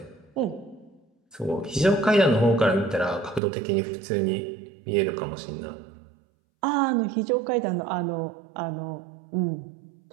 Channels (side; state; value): left; drops out; at 3.4 s